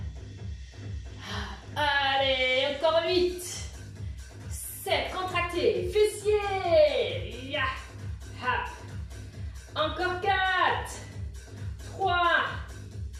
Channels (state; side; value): identical; both; correlation 1.00